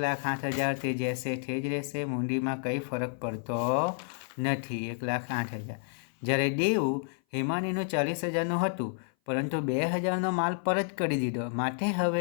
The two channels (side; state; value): right; silent; 56 dB below the other